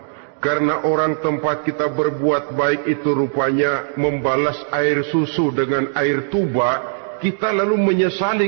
karena orang tempat kita berbuat baik itu rupanya membalas air susu dengan air tuba, kita lalu menyesali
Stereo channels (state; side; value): silent; left; digital silence